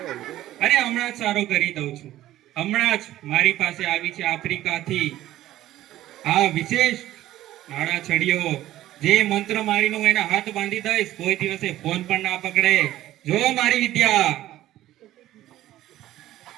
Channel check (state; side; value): quieter; left; 14.3 dB